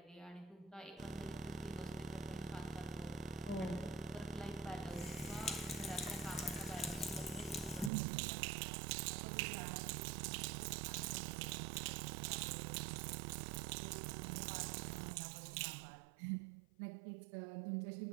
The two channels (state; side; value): drops out; left; at 7.9 s